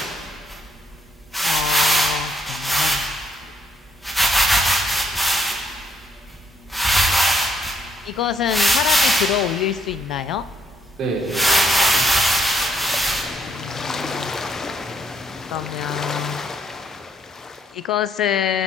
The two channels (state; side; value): normal; both; correlation 0.72